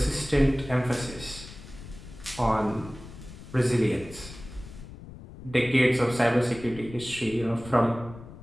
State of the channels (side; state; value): left; noise; rumble, 15 dB below the sound